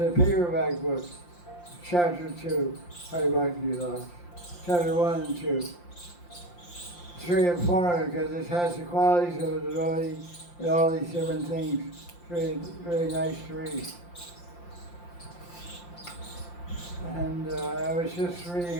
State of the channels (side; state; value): right; late; 5.7 ms